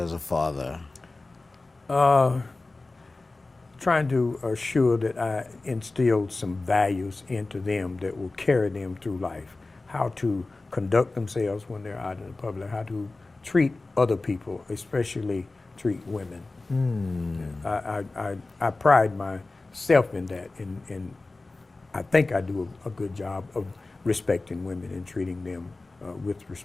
a father? Trying to assure that I instilled some values into them that will carry them through life. How to conduct themselves when they're out in the public. How to treat other people, especially treat women. I pride myself in that, and I think I do a good job of respecting women and treating them with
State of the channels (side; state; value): right; quieter; 3.3 dB